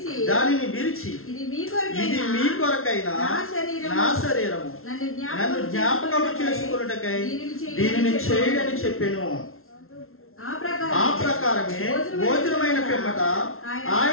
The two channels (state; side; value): late; right; 0.62 ms